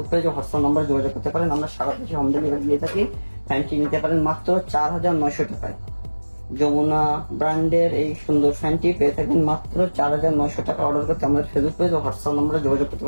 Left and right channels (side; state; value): both; inverted; correlation -1.00